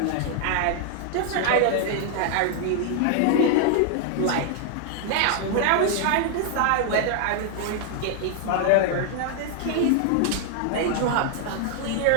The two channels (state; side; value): different; both; correlation 0.00